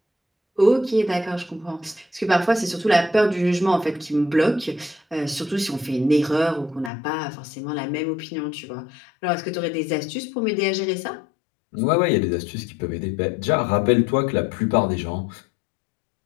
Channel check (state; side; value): drops out; right; at 6.9 s